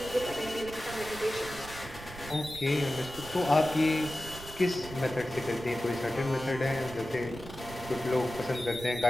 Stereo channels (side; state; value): right; noise; rumble, 14 dB below the sound